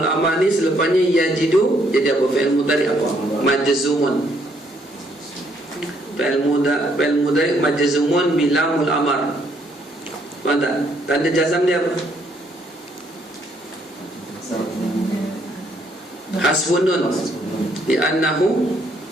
amar ni selepasnya yajidu, jadi apa? Fi'il mudhari apa? Majzumun. Fi'il mudhari majzumun bi lamul amar. Faham tak? Tanda jazam dia apa? Hasfun nun li'annahu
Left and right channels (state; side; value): normal; both; correlation 0.69